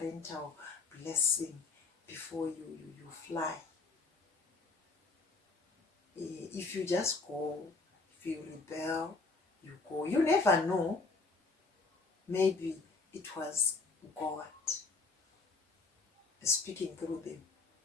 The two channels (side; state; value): right; quieter; 3.9 dB